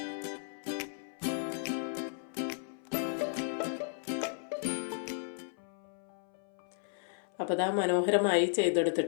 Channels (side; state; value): right; silent; 55 dB below the other